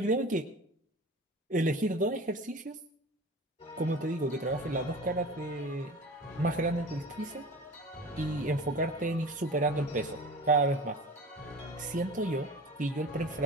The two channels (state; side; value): normal; both; correlation 0.36